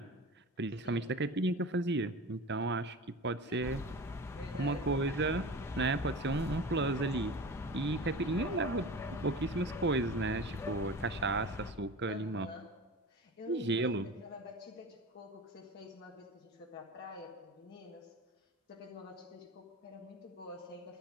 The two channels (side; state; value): both; normal; correlation 0.33